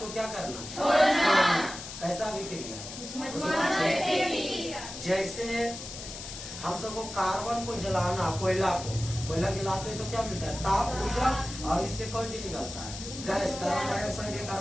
क्या करना? छोड़ना। कैसा अभिक्रिया? जैसे हम सबको कार्बन को जलाना, कोयला जलाते हैं तो क्या मिलता है? ताप, ऊर्जा। और इससे कौन चीज निकलता है? गैस, कार्बन डाइऑक्साइड या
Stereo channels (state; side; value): noise; left; hiss, 10 dB below the sound